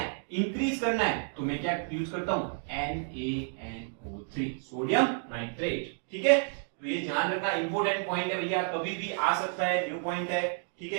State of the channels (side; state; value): left; silent; digital silence